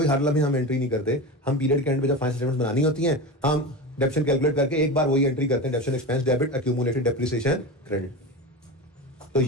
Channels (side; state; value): both; normal; correlation 0.25